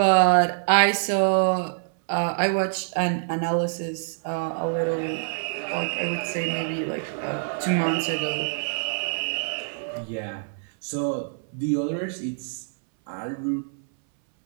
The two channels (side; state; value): left; silent; 60 dB below the other